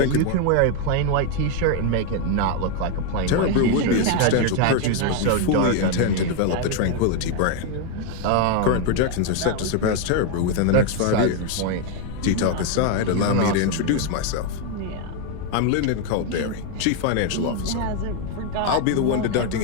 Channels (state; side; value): different; both; correlation 0.01